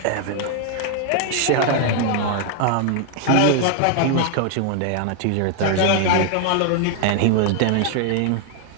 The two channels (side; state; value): both; different; correlation 0.00